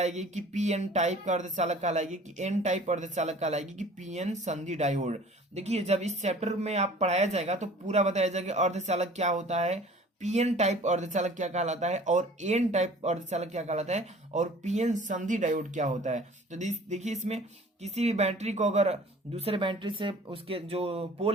कि पीएन टाइप का अर्धचालक कहलाएगी कि एन टाइप अर्धचालक कहलाएगी कि पीएन संधि डायोड। देखिए जब इस चैप्टर में आप पढ़ाया जाएगा तो पूरा बताया जाएगा अर्धचालक क्या होता है, पीएन टाइप अर्धचालक क्या कहलाता है और एन टाइप अर्धचालक क्या कहलाता है और पीएन संधि डायोड क्या होता है। तो देखिए इसमें किसी भी बैटरी को अगर दूसरे बैटरी से उसके जो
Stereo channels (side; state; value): both; normal; correlation 0.48